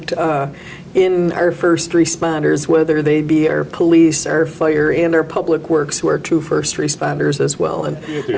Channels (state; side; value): identical; both; correlation 1.00